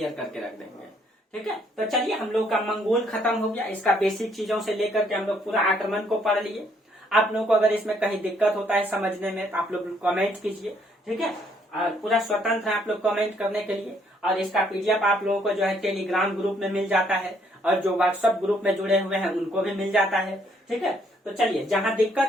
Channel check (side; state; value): both; normal; correlation 0.68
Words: करके रख देंगे। ठीक है, तो चलिए हम लोग का मंगोल खत्म हो गया, इसका बेसिक चीजों से लेकर के हम लोग पूरा आक्रमण को पढ़ लिए। आप लोगों को अगर इसमें कहीं दिक्कत होता है समझने में तो आप लोग कमेंट कीजिए। ठीक है, और पूरा स्वतंत्र है आप लोग कमेंट करने के लिए। और इसका पीडीएफ आप लोगों को जो है टेलीग्राम ग्रुप में मिल जाता है और जो व्हाट्सएप ग्रुप में जुड़े हुए हैं उनको भी मिल जाता है। ठीक है, तो चलिए जहां